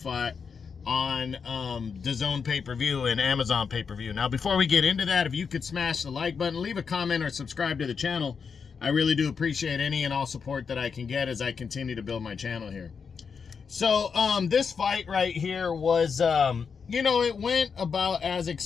on DAZN pay-per-view and Amazon pay-per-view. Now, before we get into that, if you could smash the like button, leave a comment, or subscribe to the channel, I really do appreciate any and all support that I can get as I continue to build my channel here. So, this fight right here was, it went about as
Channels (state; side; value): quieter; right; 5.9 dB